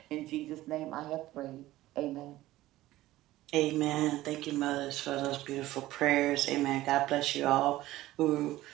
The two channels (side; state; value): left; quieter; 16.2 dB